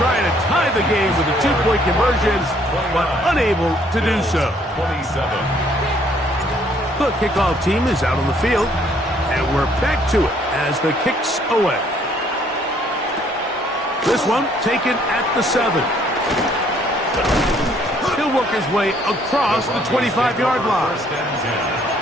to tie the game with a 2-point conversion, but unable to do so. The kickoff team is out on the field, and we're back to it as the kick's away. This one taken at the 7. He'll work his way across the 25-yard line.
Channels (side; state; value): both; normal; correlation 0.64